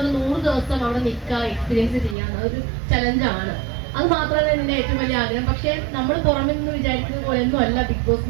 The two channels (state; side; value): drops out; left; at 2.1 s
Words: പറഞ്ഞാൽ 100 ദിവസം അവിടെ നിൽക്കുക, എക്സ്പീരിയൻസ് ചെയ്യാൻ അതൊരു ചലഞ്ചാണ്. അത് മാത്രമാണ് എന്റെ ഏറ്റവും വലിയ ആഗ്രഹം. പക്ഷെ നമ്മൾ പുറമെ നിന്ന് വിചാരിക്കുന്നത് പോലെയൊന്നും അല്ല ബിഗ് ബോസ്